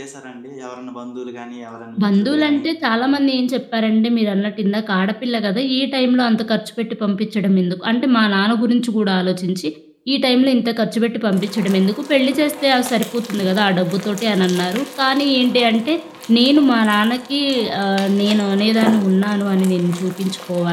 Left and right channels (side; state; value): both; identical; correlation 1.00